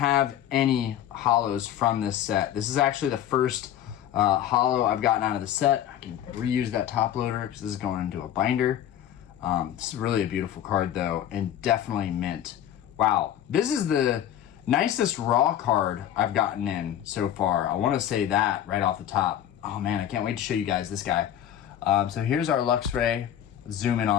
any hollows from this set. This is actually the first hollow I've gotten out of the set. I can reuse that top loader because this is going into a binder. This is really a beautiful card though, and definitely mint. Wow, this is the nicest raw card I've gotten in so far. I want to say that right off the top. Oh man, I can't wait to show you guys this guy. So here's our Luxray. Zoom in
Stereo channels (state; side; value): quieter; right; 10.9 dB